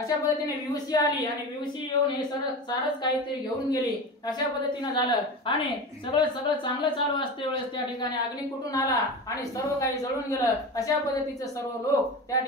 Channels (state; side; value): normal; both; correlation 0.28